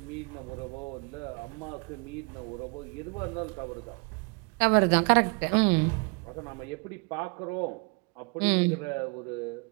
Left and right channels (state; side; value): quieter; left; 33.5 dB